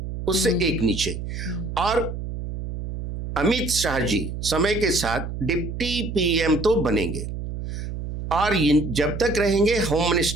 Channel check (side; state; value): right; noise; hum, 7 dB below the sound